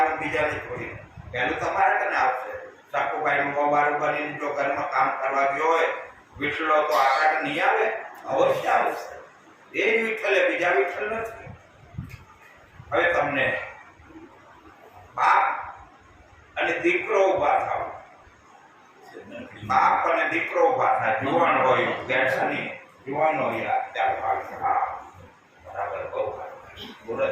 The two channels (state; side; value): identical; both; correlation 1.00